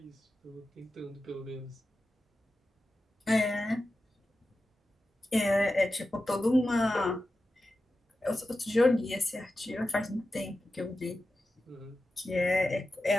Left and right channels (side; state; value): both; normal; correlation 0.92